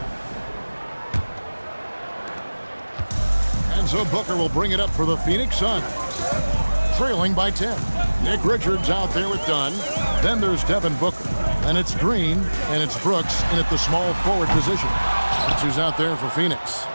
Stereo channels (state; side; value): inverted; both; correlation -1.00